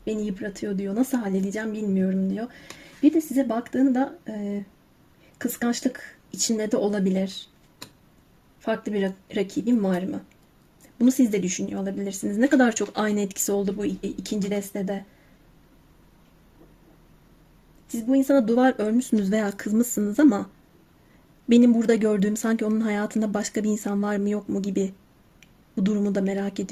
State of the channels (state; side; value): identical; both; correlation 1.00